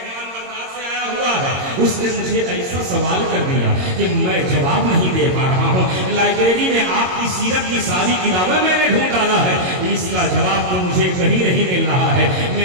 بغداد سے آیا ہوا ہے، اس نے مجھے ایسا سوال کر دیا کہ میں جواب نہیں دے پا رہا ہوں۔ لائبریری میں آپ کی سیرت کی ساری کتابیں میں نے ڈھونڈ ڈالا ہے، اس کا جواب تو مجھے کہیں نہیں مل رہا ہے۔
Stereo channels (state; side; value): late; left; 22 ms